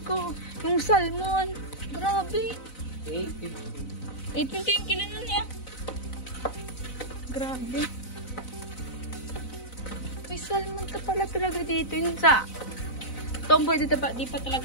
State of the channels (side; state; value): right; late; 4.0 ms